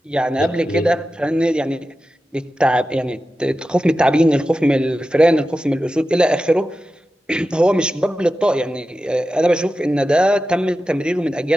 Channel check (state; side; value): normal; both; correlation 0.93